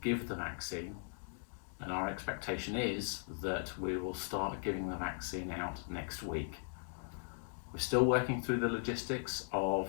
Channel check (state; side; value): silent; right; digital silence